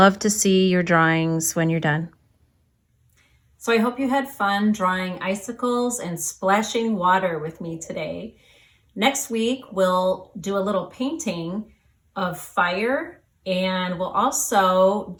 to see your drawings when you're done. So I hope you had fun drawing icicles and splashing water with me today. Next week, we'll do a little painting of fire, and we'll also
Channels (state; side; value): identical; both; correlation 1.00